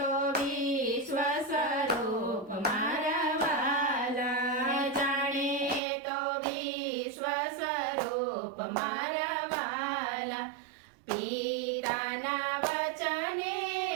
વિશ્વ સ્વરૂપ મારા વાલા, જાણે તો વિશ્વ સ્વરૂપ મારા વાલા, પિતાના વચને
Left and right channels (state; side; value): drops out; left; at 5.8 s